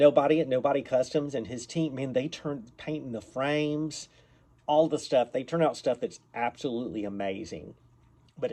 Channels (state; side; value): identical; both; correlation 1.00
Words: Customs and his team, man, they turn painting the frames, all the stuff. They turn out stuff that's absolutely amazing, but